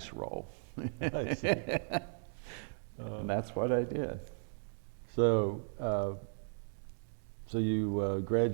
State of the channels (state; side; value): silent; left; digital silence